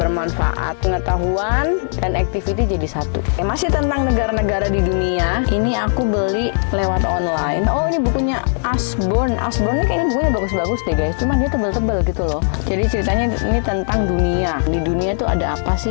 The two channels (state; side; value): silent; right; digital silence